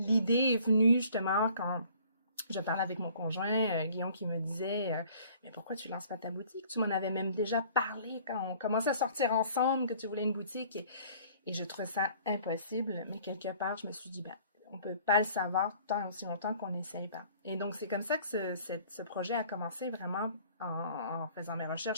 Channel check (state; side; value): inverted; both; correlation -0.54